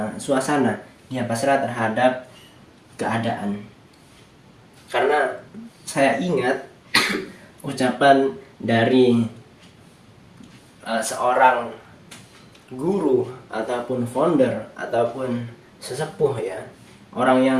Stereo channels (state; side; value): identical; both; correlation 1.00